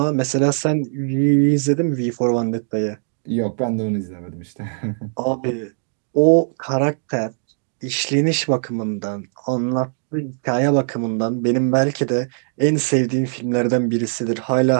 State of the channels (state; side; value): silent; left; digital silence